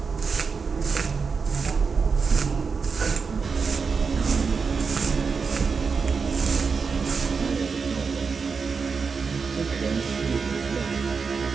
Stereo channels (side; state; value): left; quieter; 5.2 dB